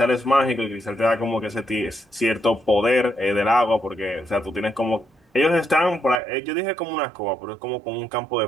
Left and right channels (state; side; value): drops out; left; at 6.2 s